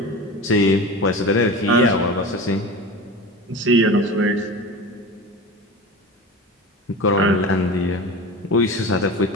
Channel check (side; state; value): both; normal; correlation 0.31